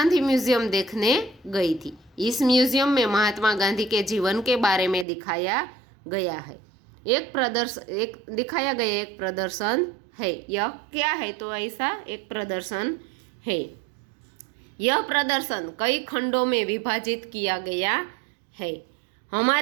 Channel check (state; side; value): drops out; left; at 5.1 s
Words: म्यूजियम देखने गई थी। इस म्यूजियम में महात्मा गांधी के जीवन के बारे में दिखाया गया है। एक प्रदर्शन है। यह क्या है? तो ऐसा एक प्रदर्शन है। यह प्रदर्शन कई खंडों में विभाजित किया गया है।